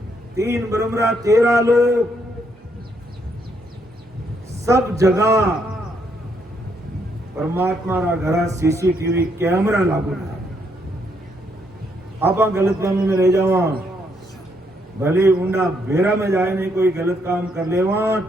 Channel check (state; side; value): normal; both; correlation 0.74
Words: 3 ब्रह्मरा 13 लोक, सब जगह परमात्मा रा घरा सीसीटीवी कैमरा लागू है। आप गलत फहमी में रह जावा, भले ऊंडा बेरा में जाए नहीं कोई गलत काम कर लेवा